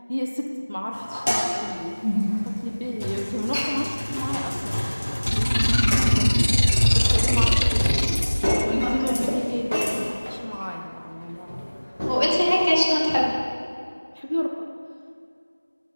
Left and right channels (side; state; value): both; inverted; correlation -1.00